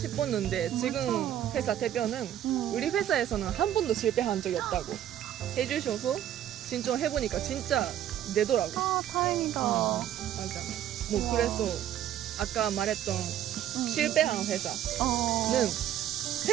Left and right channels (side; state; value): left; quieter; 11.3 dB